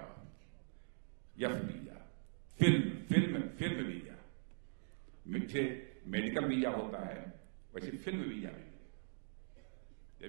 F visa, film visa. मुझे मेडिकल वीजा होता है, वैसे फिल्म वीजा भी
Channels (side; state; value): left; silent; digital silence